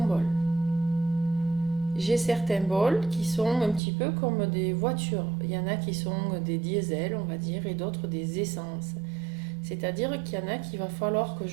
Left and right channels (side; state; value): left; drops out; at 3.8 s